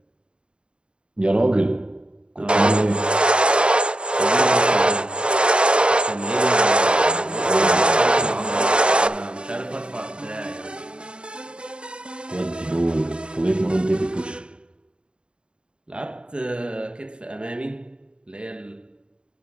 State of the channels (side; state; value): left; late; 0.053 ms